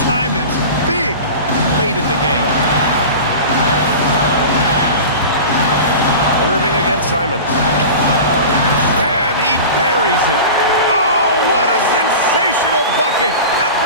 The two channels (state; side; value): inverted; both; correlation -0.33